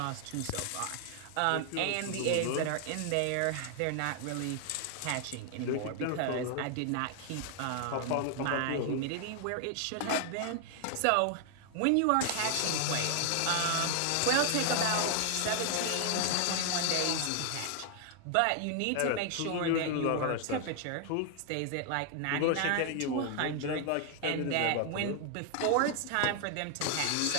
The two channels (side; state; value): both; different; correlation 0.00